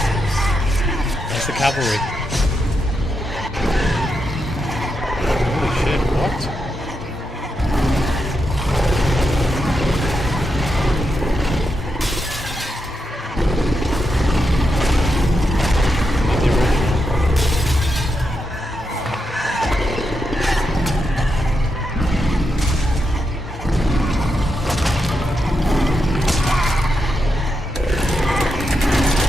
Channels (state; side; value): normal; both; correlation 0.85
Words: There's the cavalry. Holy shit, what? Not the original.